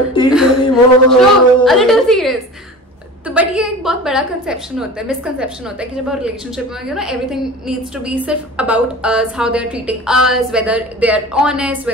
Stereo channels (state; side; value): normal; both; correlation 0.36